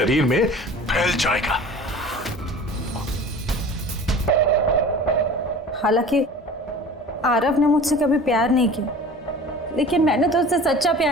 में फैल जाएगा। हालांकि आरव ने मुझसे कभी प्यार नहीं किया, लेकिन मैंने तो उससे सच्चा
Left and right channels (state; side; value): normal; both; correlation 0.41